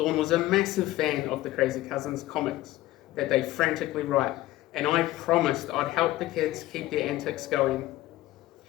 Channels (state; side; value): quieter; right; 16.3 dB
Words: was a massive fan of the Crazy Cousins comics that they frantically write, and I promised I'd help the kids keep their antics going.